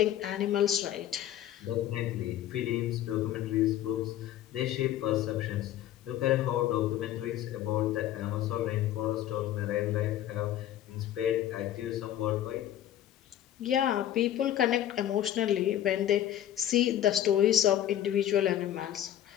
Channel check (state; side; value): quieter; right; 11.9 dB